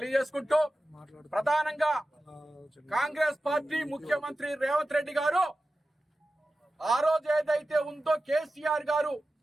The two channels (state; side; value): normal; both; correlation 0.94